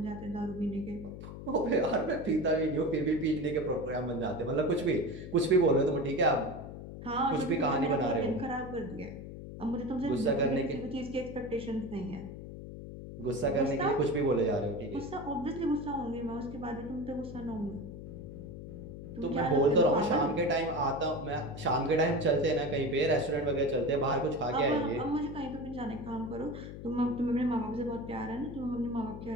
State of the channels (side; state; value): left; noise; hum, 11 dB below the sound